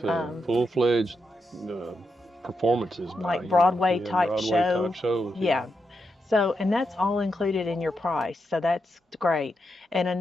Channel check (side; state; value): both; normal; correlation 0.85